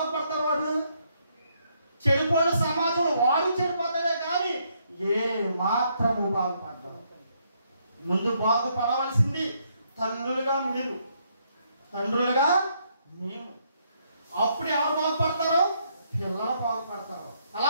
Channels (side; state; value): both; inverted; correlation -0.73